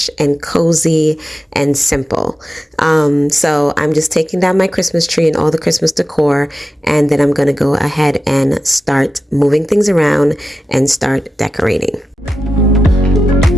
and cozy and simple. So I'm just taking down my Christmas tree and all the Christmas decor, and then I'm gonna go ahead and start moving things around and start decorating.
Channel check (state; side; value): normal; both; correlation 0.92